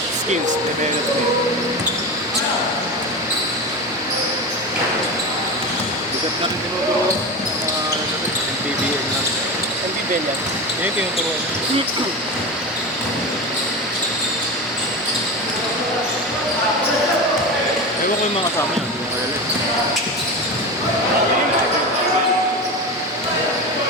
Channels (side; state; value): both; normal; correlation 0.24